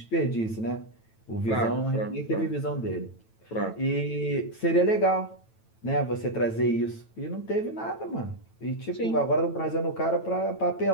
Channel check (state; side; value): late; right; 9.0 ms